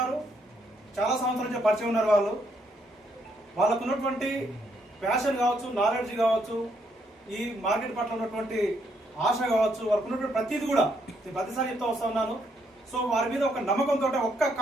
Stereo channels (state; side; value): normal; both; correlation 0.73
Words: చాలా సంవత్సరాల నుంచి పరిచయం ఉన్నారు. వాళ్ళకు ఉన్నటువంటి ప్యాషన్ కావచ్చు, నాలెడ్జ్ కావచ్చు, ఈ మార్కెట్ పట్ల ఉన్నటువంటి ఆశ కావచ్చు, వాళ్ళకు ఉన్నటువంటి ప్రతిదీ కూడా నేను ప్రతిసారి చెప్తా వస్తా ఉన్నాను. సో వారి మీద ఒక నమ్మకంతో, ఒక్క